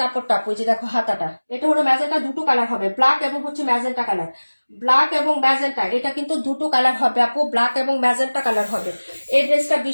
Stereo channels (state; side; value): inverted; both; correlation -1.00